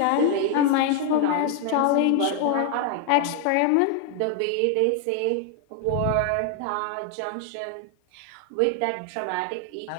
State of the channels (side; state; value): both; different; correlation 0.00